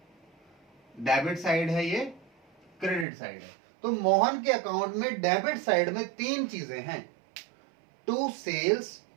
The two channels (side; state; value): left; drops out; at 3.1 s